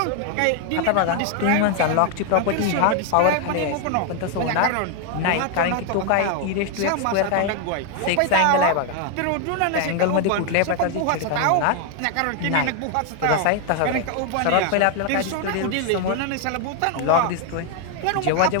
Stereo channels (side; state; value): both; different; correlation 0.00